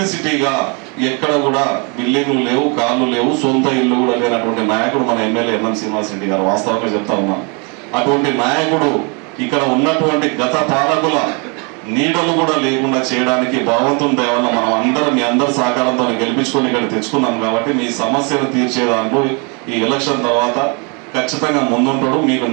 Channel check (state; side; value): quieter; left; 33.5 dB